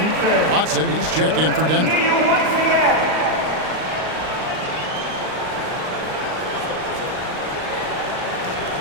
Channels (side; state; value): left; late; 38 ms